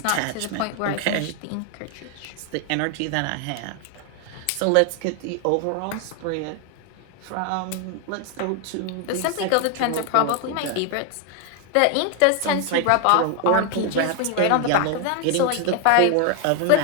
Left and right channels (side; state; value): both; different; correlation 0.01